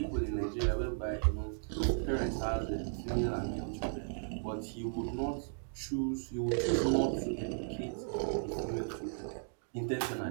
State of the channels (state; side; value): silent; left; digital silence